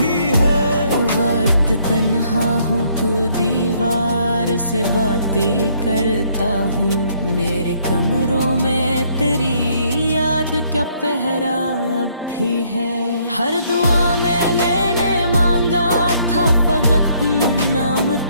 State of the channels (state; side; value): inverted; both; correlation -0.67